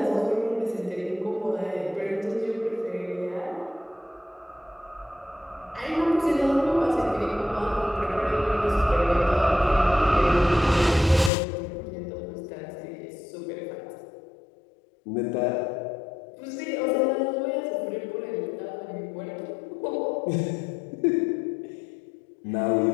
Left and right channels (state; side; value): drops out; right; at 11.3 s